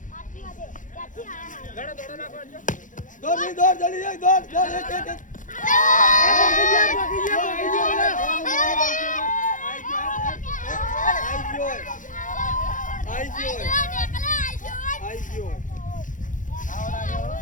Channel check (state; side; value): late; right; 0.37 ms